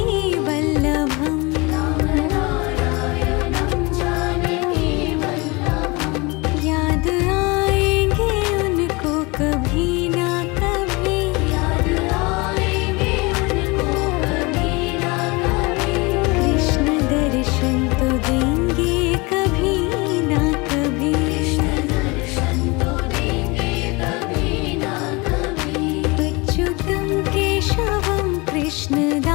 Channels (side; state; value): right; quieter; 26.1 dB